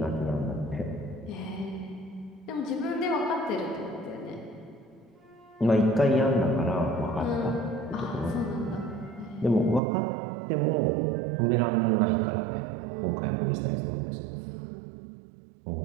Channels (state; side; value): drops out; left; at 9.8 s